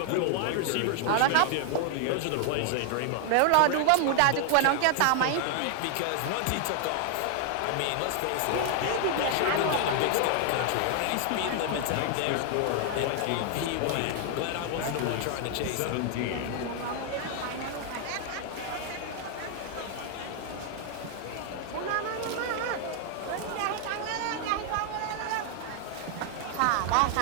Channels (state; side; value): different; both; correlation 0.00